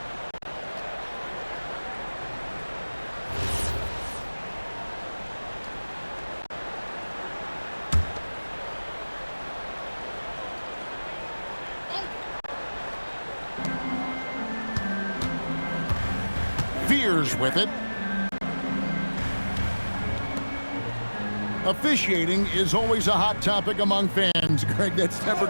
Fears with it. Officiating is always a hot topic among fans, Greg. That's never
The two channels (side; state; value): both; inverted; correlation -1.00